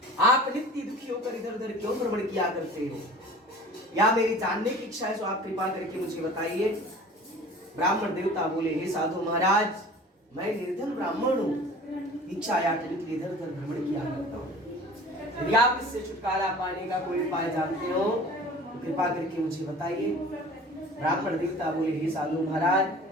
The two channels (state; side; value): normal; both; correlation 0.43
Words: आप नित्य दुखी होकर इधर उधर क्यों भ्रमण किया करते हो? या मेरी जानने की इच्छा है, तो आप कृपा करके मुझे बताइए। ब्राह्मण देवता बोले, हे साधु महाराज, मैं निर्धन ब्राह्मण हूँ, भिक्षा याचने के लिए इधर उधर भ्रमण किया करता हूँ। यदि आप इससे छुटकारा पाने का कोई उपाय जानते हो तो कृपा करके मुझे बताइए। ब्राह्मण देवता बोले, हे साधु महाराज,